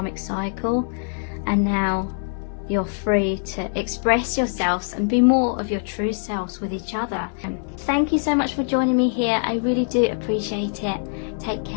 cycle, and now you're free to express yourselves and be more of your true selves with each other. Thank you so much for joining me here. I really do appreciate it. Take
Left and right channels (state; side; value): silent; right; 60 dB below the other